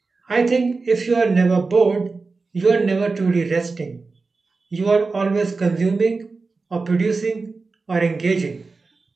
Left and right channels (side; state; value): left; quieter; 4.0 dB